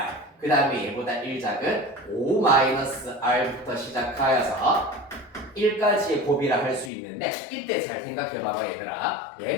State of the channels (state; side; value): drops out; right; at 6.9 s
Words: 그 다음에 얘보다 1 작은 5-R부터 시작하여서 1까지의 곱이라 할 수 있는데 이때 잘 생각해봐봐 얘들아.